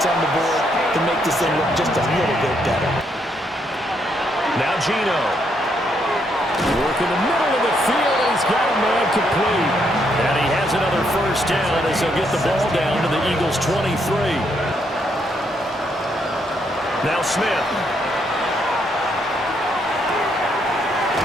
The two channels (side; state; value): both; normal; correlation 0.75